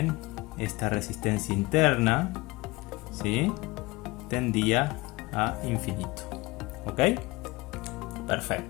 esta resistencia interna, ¿sí?, tendía a infinito. ¿Ok?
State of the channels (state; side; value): quieter; right; 22.7 dB